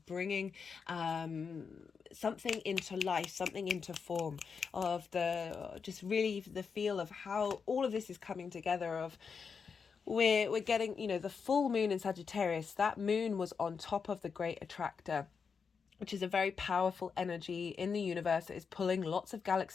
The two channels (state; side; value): quieter; right; 5.8 dB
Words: bringing something into life, something into form, of just really the feel of how all of this is coming together. Of we're getting, you know, the full moon in Sagittarius. That moon was on top of the great attractor, which is a very powerful energy in the universe that is pulling lots of